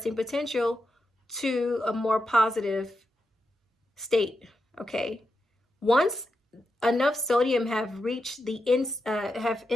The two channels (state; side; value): normal; both; correlation 0.87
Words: potential to a more positive state, okay? Once enough sodium have reached the what